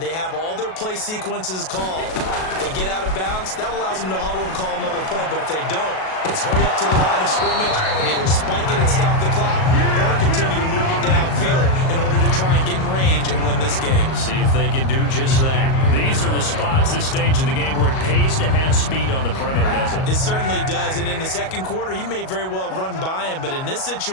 they have all their play sequences called. If they get out of bounds, that allows them to huddle and call another play, but if they don't, it's hurry up to the line of scrimmage and either spike it and stop the clock or continue to move it downfield in order to try and get in range and win this game. See if they can do just that. These are the spots, this stage of the game, where it pays to have speed on the perimeter, doesn't it? It certainly does, and in the second quarter, he may very well run by him, but in this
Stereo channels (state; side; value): late; right; 37 ms